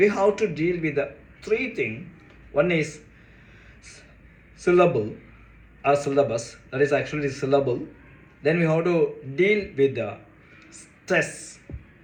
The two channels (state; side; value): identical; both; correlation 1.00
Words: have to deal with the three things. One is syllable or syllabus, that is actually syllable. Then we have to deal with the stress.